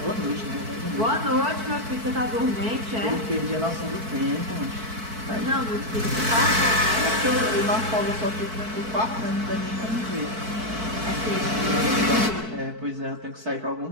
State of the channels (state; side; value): late; left; 4.6 ms